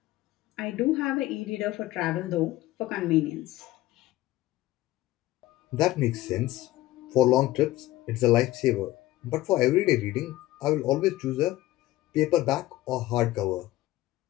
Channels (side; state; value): right; quieter; 16.7 dB